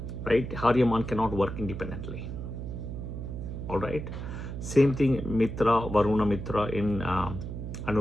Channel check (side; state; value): right; noise; hum, 7 dB below the sound